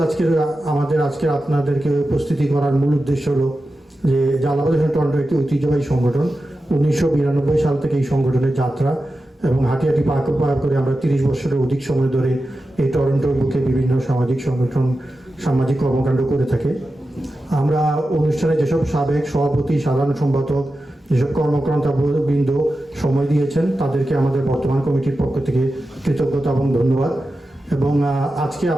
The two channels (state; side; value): normal; both; correlation 0.92